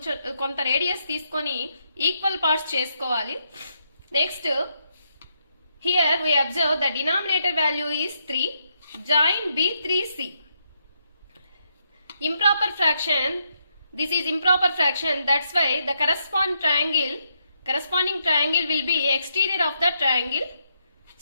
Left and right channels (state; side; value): inverted; both; correlation -0.79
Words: కొంత radius తీసుకొని equal parts చేసుకోవాలి. Next here we observe the denominator value is 3. Join B3C. Improper fraction. This is improper fraction. That's why the corresponding triangle will be exterior of the triangle.